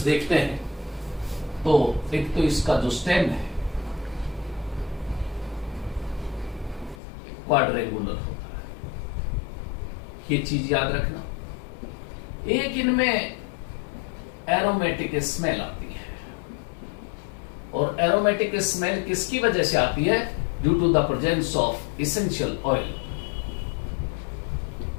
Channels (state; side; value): drops out; right; at 7.0 s